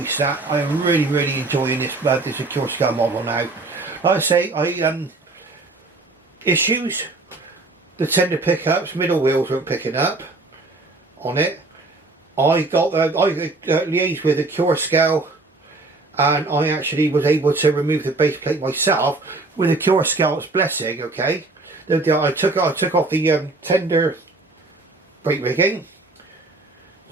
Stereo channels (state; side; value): quieter; left; 3.3 dB